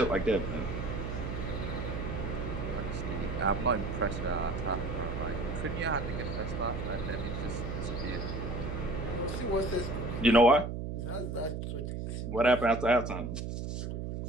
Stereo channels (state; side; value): noise; right; hum, 4 dB below the sound